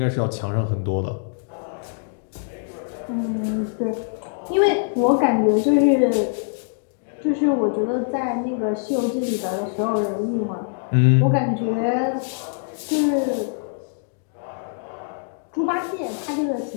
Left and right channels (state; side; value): silent; right; digital silence